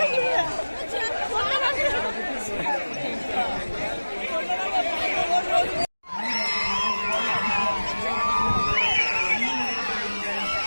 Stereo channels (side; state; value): both; inverted; correlation -1.00